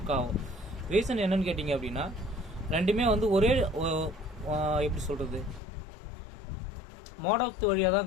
ஆகும். ரீசன் என்னன்னு கேட்டிங்க அப்படின்னா, ரெண்டுமே வந்து ஒரே எப்படி சொல்கிறது, மோடத்து வழியாக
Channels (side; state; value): right; drops out; at 5.6 s